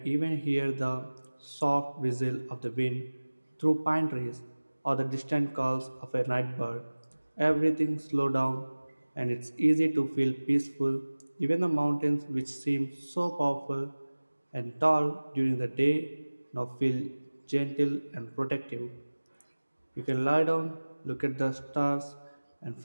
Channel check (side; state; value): both; inverted; correlation -1.00